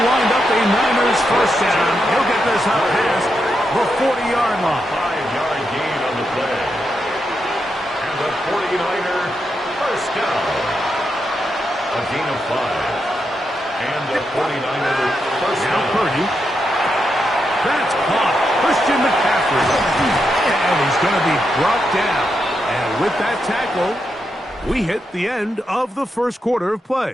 wind up a Niners 1st down. He'll get this out past the 40-yard line. 5-yard gain on the play. And the 49er 1st down. A gain of 5. And the 49er 1st Now down. Purdy. That's caught. Christian McCaffrey. And he's going to be brought down. And with that tackle, we hit the end of the 1st quarter of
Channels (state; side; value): normal; both; correlation 0.84